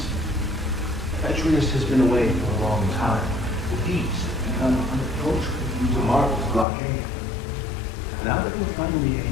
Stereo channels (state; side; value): drops out; right; at 6.7 s